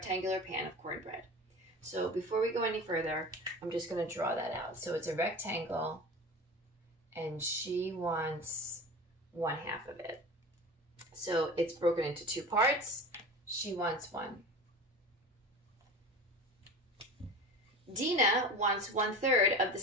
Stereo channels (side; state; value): both; normal; correlation 0.33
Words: So before we go any further, I'm just going to draw that out. So it's a rectangle and she wants 1/2 of it. So it's broken into 2 parts. She wants 1. Dina wants 1/3 of the